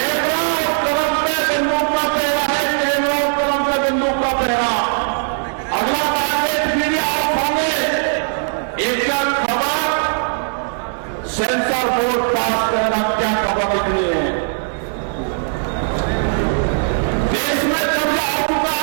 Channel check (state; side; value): silent; left; 56 dB below the other